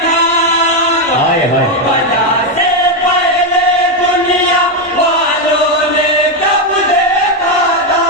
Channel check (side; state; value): both; normal; correlation 0.05